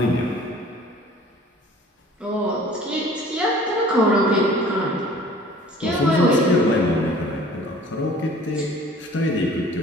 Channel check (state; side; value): normal; both; correlation 0.49